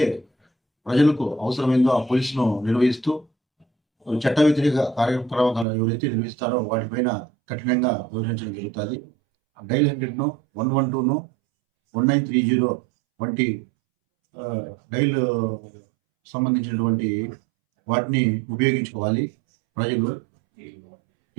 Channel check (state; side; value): drops out; left; at 5.7 s